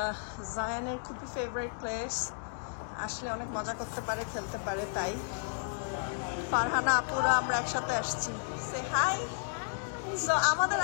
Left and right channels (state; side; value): silent; right; digital silence